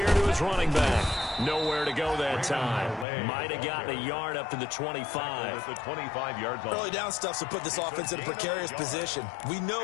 to his running back. Nowhere to go that time. Might have gotten a yard up to the 25. The 25-yard line. Early down stuff to put this offense in a precarious position. We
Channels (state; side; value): drops out; right; at 3.1 s